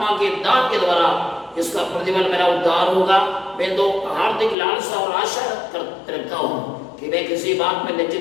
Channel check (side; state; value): right; drops out; at 4.5 s